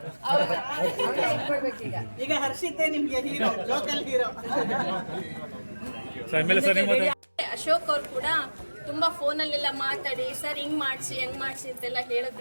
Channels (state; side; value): inverted; both; correlation -1.00